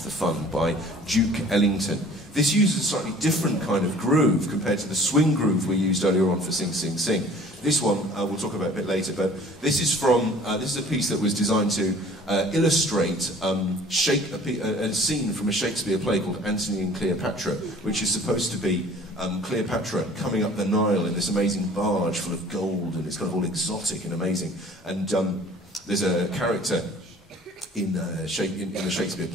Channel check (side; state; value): both; normal; correlation 0.50